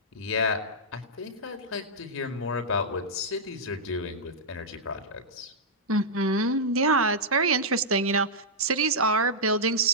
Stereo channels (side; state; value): both; normal; correlation -0.08